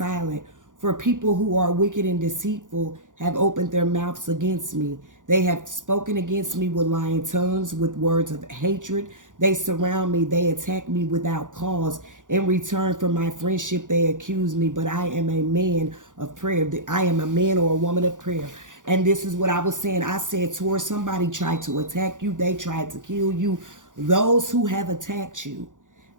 for people who are wicked and deceitful have opened their mouths against me. They have spoken against me with lying tongues, with words of hatred. They surround me. They attack me without cause. In return for my friendship, they accuse me, but I am a man of prayer. I am a man or a woman of prayer. And this is what I was saying. I said, towards somebody tried to attack you. They tried to kill you. Those who have attacked you,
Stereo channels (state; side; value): late; left; 0.87 ms